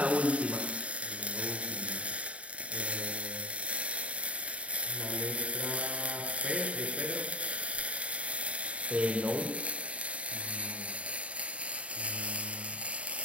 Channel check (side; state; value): left; late; 0.064 ms